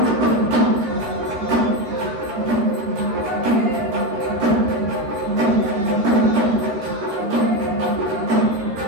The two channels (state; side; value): late; left; 13 ms